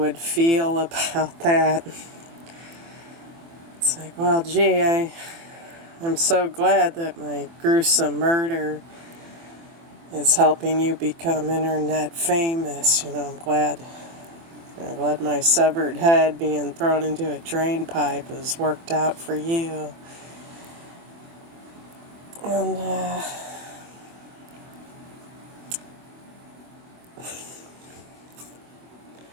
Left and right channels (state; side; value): late; left; 24 ms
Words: feel about that. It's like, well, gee, I'm so glad that my gruesome murder is helping you become internet famous. I'm glad my severed head being thrown into a drain pipe has worked out for you. And,